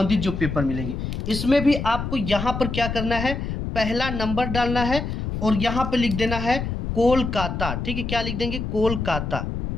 जो पेपर मिलेंगे इसमें भी आपको यहाँ पर क्या करना है, पहला नंबर डालना है और यहाँ पे लिख देना है कोलकाता। ठीक है, क्या लिख देंगे, कोलकाता।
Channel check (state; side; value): noise; left; rumble, 4 dB below the sound